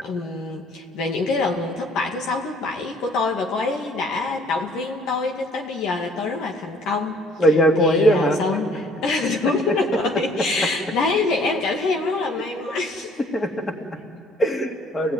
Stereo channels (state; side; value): normal; both; correlation 0.58